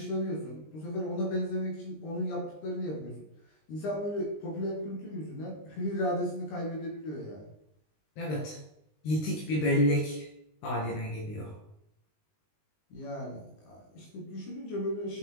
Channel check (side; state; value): right; late; 20 ms